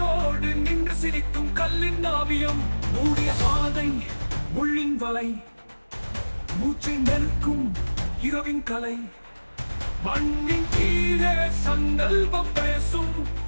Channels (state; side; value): inverted; both; correlation -1.00